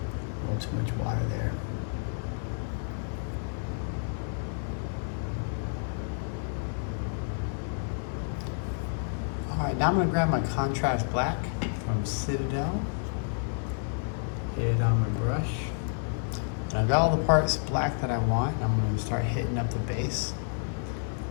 A little too much water there. All right, now I'm going to grab my contrast black from Citadel, hit it on my brush, and I've got all the parts black that I want. I'm going to start hitting up the base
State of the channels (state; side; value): silent; right; digital silence